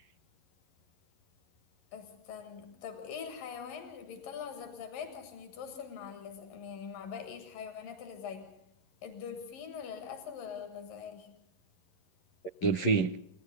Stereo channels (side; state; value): right; late; 11 ms